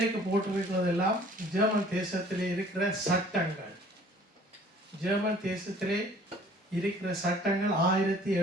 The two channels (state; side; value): normal; both; correlation 0.53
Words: போட்டிருக்கிறதெல்லாம் ஜெர்மன் தேசத்திலே இருக்கிற சட்டங்கள். ஜெர்மன் தேசத்திலே இருக்கிற சட்டங்கள்